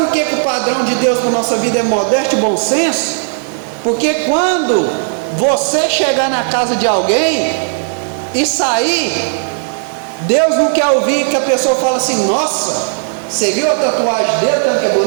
que o padrão de Deus para a nossa vida é modéstia e bom senso? Porque quando você chegar na casa de alguém e sair, Deus não quer ouvir que a pessoa fale assim: nossa, você viu a tatuagem dele, tanto que é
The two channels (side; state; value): left; silent; digital silence